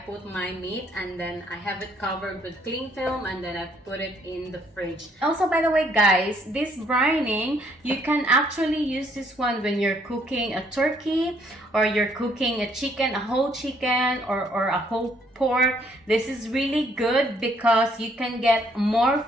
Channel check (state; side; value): normal; both; correlation 0.67